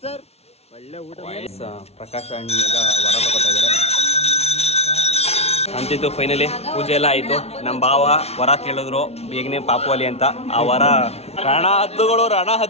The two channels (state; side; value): late; right; 0.31 ms